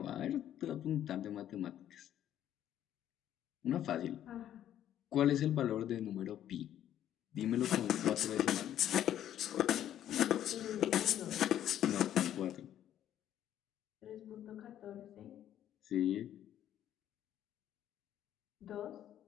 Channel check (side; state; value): right; quieter; 11.2 dB